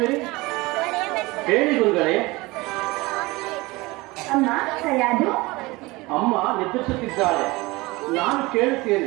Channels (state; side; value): quieter; left; 22.3 dB